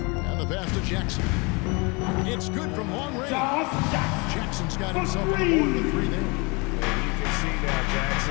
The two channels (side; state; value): right; quieter; 29.0 dB